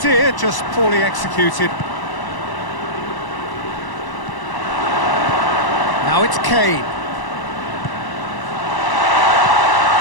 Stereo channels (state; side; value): late; right; 1.0 ms